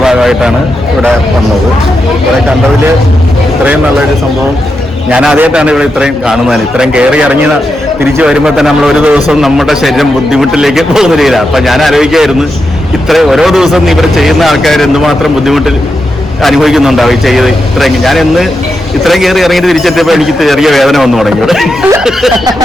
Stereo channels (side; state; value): both; normal; correlation 0.86